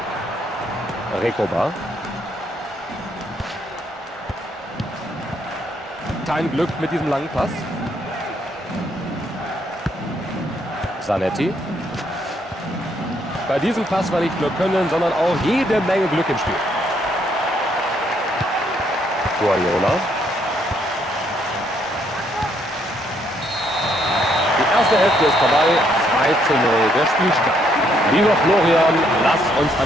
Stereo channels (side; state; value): both; normal; correlation 0.71